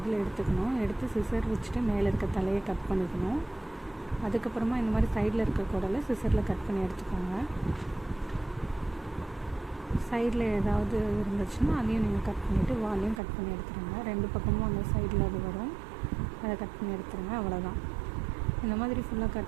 எடுத்துக்கணும். எடுத்து சிசர் வச்சுட்டு மேலே இருக்க தலையை கட் பண்ணிக்கணும். அதுக்கப்புறமா இந்த மாதிரி சைடில் இருக்க குடலை சிசரில் கட் பண்ணி எடுத்துக்கோங்க. சைடில் ஏதாவது இருந்துச்சுன்னா அதையும் நீங்கள் கட் பண்ணிவிட்டு வாலையும் கட் பண்ணி எடுத்துருங்க. ரெண்டு பக்கமும் அந்த சைடில் அது வரும், அதை கட் பண்ணி எடுத்துருங்க. அவ்வளோதான். இந்த மாதிரி ஃபுல்லாக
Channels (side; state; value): left; drops out; at 13.2 s